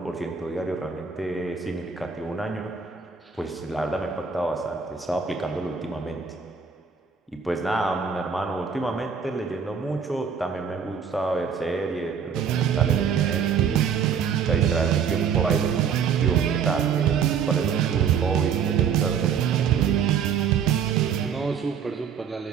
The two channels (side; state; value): left; quieter; 6.8 dB